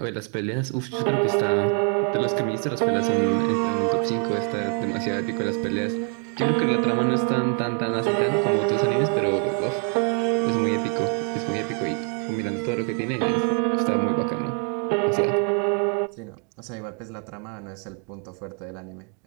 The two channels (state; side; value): quieter; left; 37.7 dB